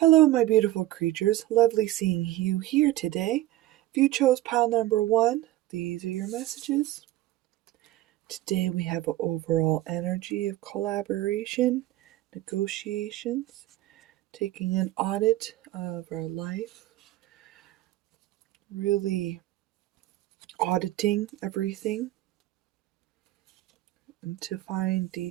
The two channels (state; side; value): quieter; left; 15.9 dB